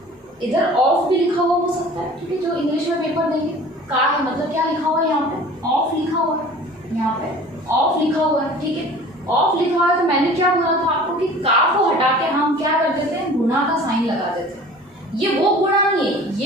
इधर ऑफ भी लिखा हुआ हो सकता है, ठीक है। जो इंग्लिश में पेपर देंगे का है मतलब क्या लिखा हुआ है, यहाँ पे ऑफ लिखा हुआ है, यहाँ पे ऑफ लिखा हुआ है, ठीक है। ऑफ लिखा हुआ है तो मैंने क्या बोला था आपको कि का को हटा के हम क्या कर देते हैं, गुणा का साइन लगा देते हैं। ये वो गुणा नहीं है,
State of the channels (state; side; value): normal; both; correlation 0.44